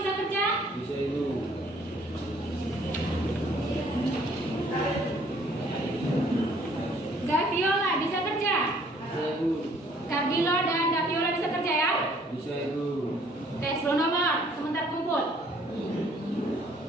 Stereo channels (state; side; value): normal; both; correlation 0.60